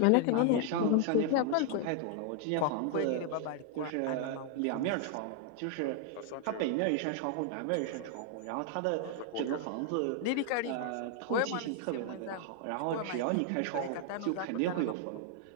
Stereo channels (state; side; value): different; both; correlation 0.00